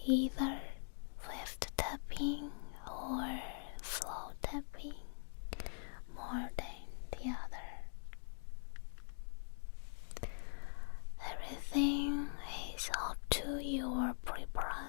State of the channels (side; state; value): right; silent; digital silence